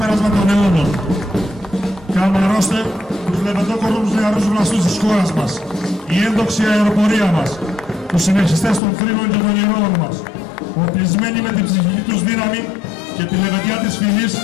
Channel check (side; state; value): right; drops out; at 8.8 s